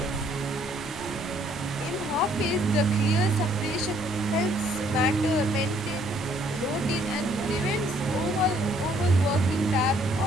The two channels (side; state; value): left; noise; rumble, 16 dB below the sound